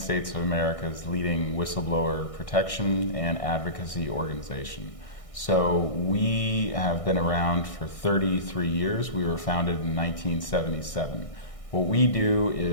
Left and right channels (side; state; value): right; late; 1.6 ms